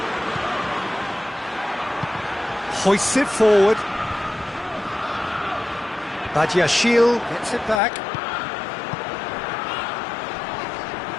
Hoists it forward. Badiashile gets it back.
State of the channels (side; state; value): right; drops out; at 7.8 s